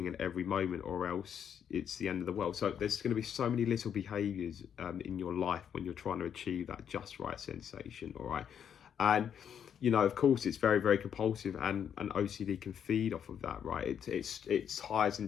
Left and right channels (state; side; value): quieter; right; 8.4 dB